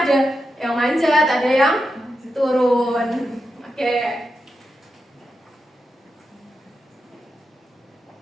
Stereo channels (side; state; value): both; normal; correlation 0.88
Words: ada yang manjat, ada yang turun. Oke.